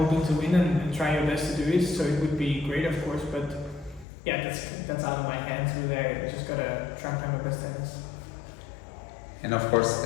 to win and try your best to do it. So it would be great, of course, but yeah, that's out of my hands. Really, I just gotta try and play my best tennis. And of course,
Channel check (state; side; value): drops out; right; at 4.0 s